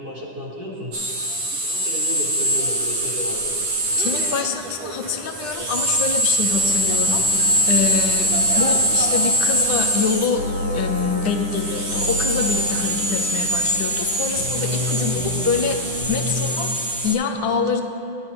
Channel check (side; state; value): left; late; 10 ms